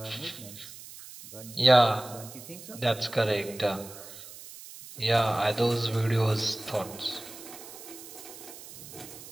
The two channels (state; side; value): noise; right; hiss, 15 dB below the sound